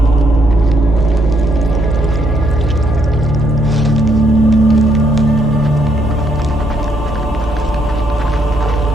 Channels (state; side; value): normal; both; correlation 0.73